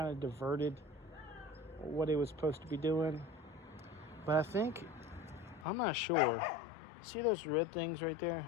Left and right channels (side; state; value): right; drops out; at 5.7 s